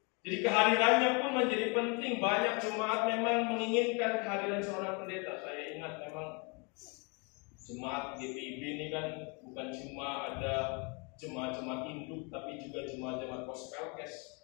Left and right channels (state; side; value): quieter; right; 32.3 dB